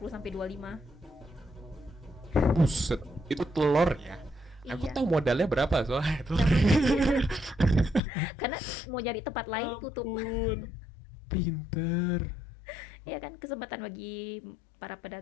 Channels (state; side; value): drops out; right; at 8.0 s